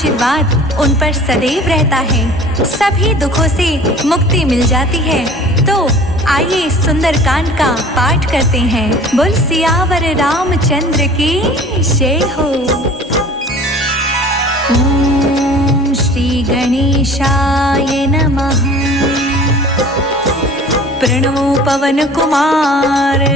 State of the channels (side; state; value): both; normal; correlation 0.45